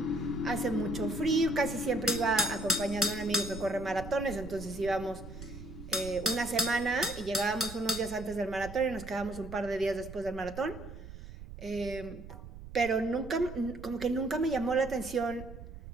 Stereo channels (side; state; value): right; noise; rumble, 13 dB below the sound